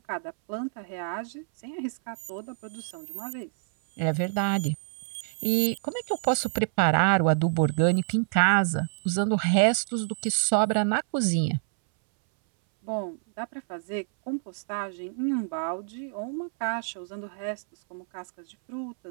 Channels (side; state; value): left; silent; 60 dB below the other